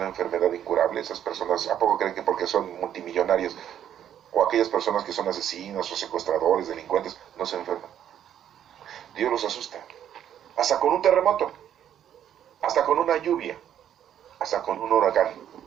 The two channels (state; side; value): quieter; left; 10.1 dB